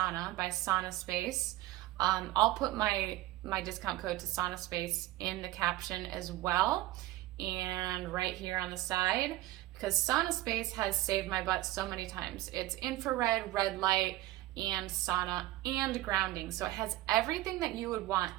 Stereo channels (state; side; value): quieter; left; 17.1 dB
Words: by Sauna Space. I'll put my discount code to Sauna Space in the caption as well, and right here on the side, because Sauna Space has saved my butt so many times. It's infrared, red light, and sauna, and grounding. So it has everything that you would want